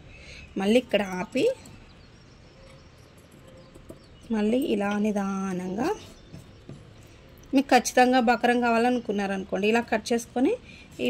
మళ్ళీ ఇక్కడ ఆపి మళ్ళీ ఇలా నిదానంగా మీకు ఖచ్చితంగా బకరం కావాలనుకున్నారనుకోండి, ఇలా కట్ చేసుకొని ఈ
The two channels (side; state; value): both; identical; correlation 1.00